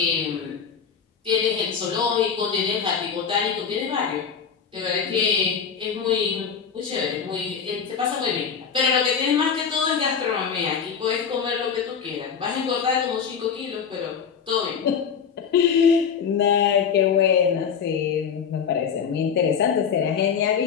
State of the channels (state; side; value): quieter; right; 6.8 dB